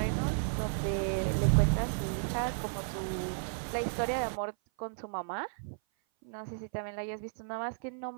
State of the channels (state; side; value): silent; left; 55 dB below the other